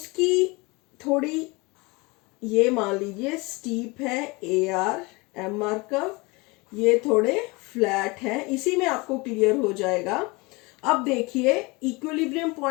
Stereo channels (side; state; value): right; quieter; 25.6 dB